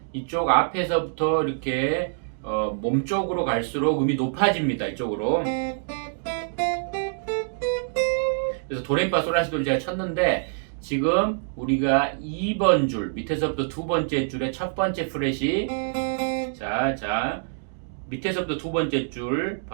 이쪽 앞에서부터 이렇게 몸쪽으로 갈수록 음이 높아집니다. 이쪽으로. 그래서 도레미파솔라시도를 제가 쳤는데 지금 우리가 2번 줄 밑에서부터 두 번째 줄의 첫 번째 프렛이 자 밑에서부터 두 번째 줄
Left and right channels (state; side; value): silent; left; digital silence